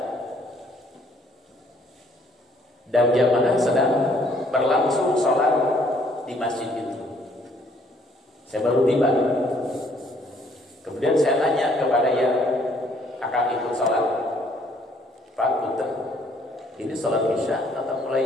dan jamaah sedang berlangsung sholat di masjid itu. Saya baru tiba. Kemudian saya tanya kepada yang akan ikut sholat, Pak Punten, ini sholat isya atau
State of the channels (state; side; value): normal; both; correlation 0.64